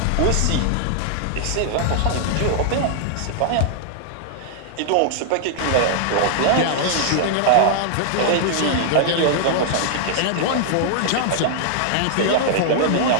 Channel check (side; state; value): both; different; correlation -0.01